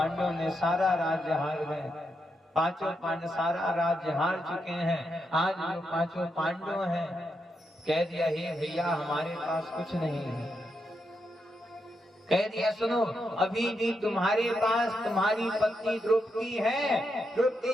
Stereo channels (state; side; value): normal; both; correlation 0.83